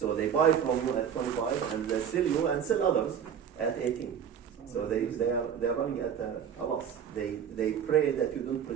they buy from you at 25 and they sell you and sell others at 18. So they are running at a loss. They pray that you don't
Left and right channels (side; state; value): left; quieter; 8.1 dB